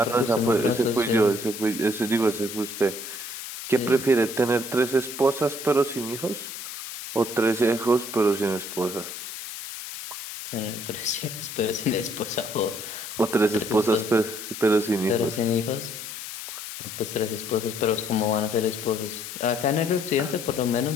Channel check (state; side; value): noise; left; hiss, 9 dB below the sound